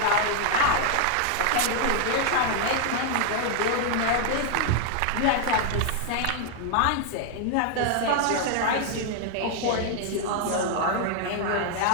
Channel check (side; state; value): both; different; correlation 0.00